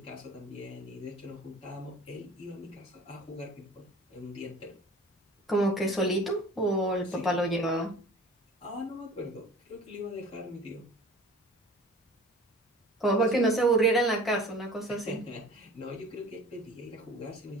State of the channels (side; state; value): both; normal; correlation 0.44